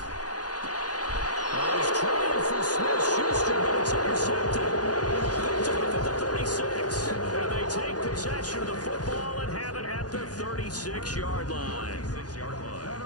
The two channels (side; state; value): right; late; 0.69 ms